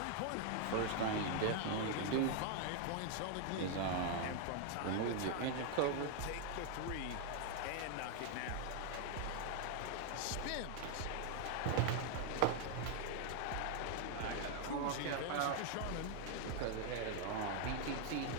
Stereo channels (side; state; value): both; different; correlation 0.00